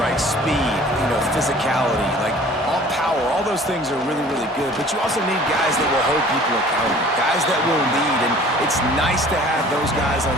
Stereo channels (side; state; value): both; normal; correlation 0.49